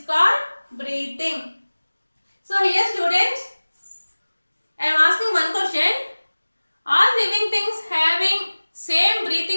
called breathing. So here, students, I am asking one question. Are living things having same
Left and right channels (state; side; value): inverted; both; correlation -1.00